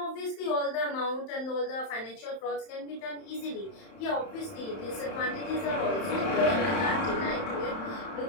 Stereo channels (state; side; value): late; right; 31 ms